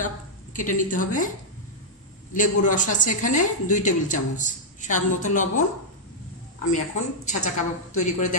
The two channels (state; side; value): normal; both; correlation -0.06